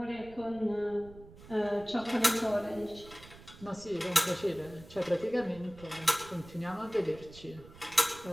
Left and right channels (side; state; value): right; noise; rumble, 19 dB below the sound